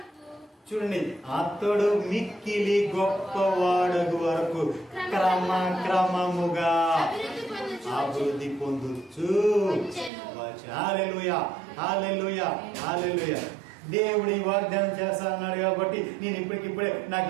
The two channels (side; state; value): left; drops out; at 10.1 s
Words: చూడండి, అతడు మిక్కిలి గొప్పవాడగు వరకు క్రమముగా అభివృద్ధి పొందుచు. హల్లెలూయా, హల్లెలూయా, హల్లెలూయా. దేవుడు ఈ వాగ్దానం చేస్తా అన్నాడు కాబట్టి నేను ఇప్పటికిప్పుడే నాకు